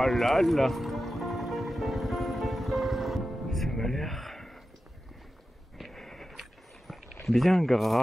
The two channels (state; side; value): normal; both; correlation 0.92